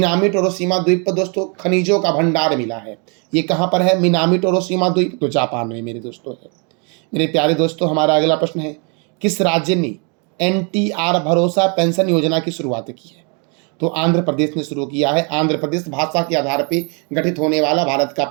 टोरोशिमा द्वीप पर दोस्तों खनिजों का भंडार मिला है। ये कहाँ पर है? मिनामी टोरोशिमा द्वीप, तो जापान में मेरे दोस्तों है। मेरे प्यारे दोस्तों, हमारा अगला प्रश्न है, किस राज्य ने NTR भरोसा पेंशन योजना की शुरुआत की है? तो आंध्र प्रदेश ने शुरू किया है। आंध्र प्रदेश भाषा के आधार पर गठित होने वाला भारत का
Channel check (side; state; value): left; quieter; 35.5 dB